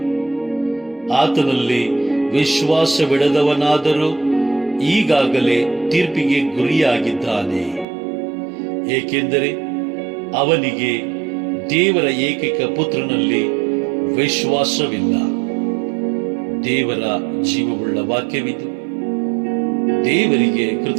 ಆತನಲ್ಲಿ ವಿಶ್ವಾಸವಿಡದವನಾದರೂ ಈಗಾಗಲೇ ತೀರ್ಪಿಗೆ ಗುರಿಯಾಗಿದ್ದಾನೆ, ಏಕೆಂದರೆ ಅವನಿಗೆ ದೇವರ ಏಕೈಕ ಪುತ್ರನಲ್ಲಿ ವಿಶ್ವಾಸವಿಲ್ಲ. ದೇವರ ಜೀವವುಳ್ಳ ವಾಕ್ಯವಿದು. ದೇವರಿಗೆ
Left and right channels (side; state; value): left; drops out; at 7.9 s